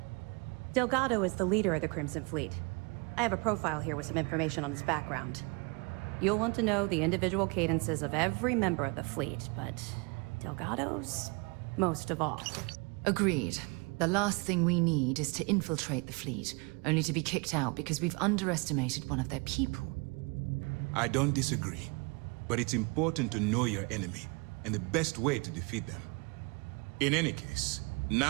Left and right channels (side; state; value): left; quieter; 30.4 dB